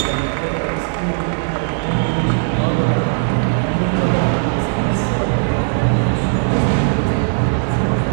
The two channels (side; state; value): left; silent; 68 dB below the other